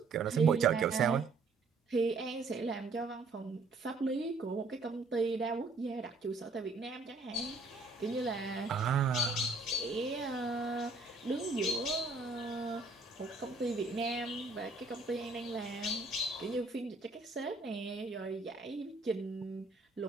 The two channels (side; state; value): left; quieter; 3.6 dB